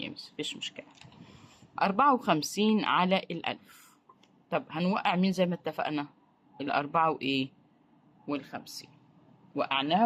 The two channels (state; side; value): identical; both; correlation 1.00